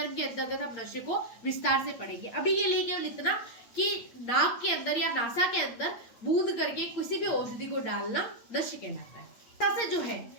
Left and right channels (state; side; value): late; right; 8.7 ms